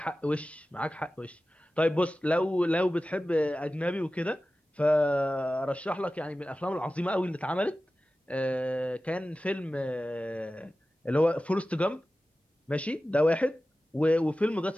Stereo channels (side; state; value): both; normal; correlation 0.95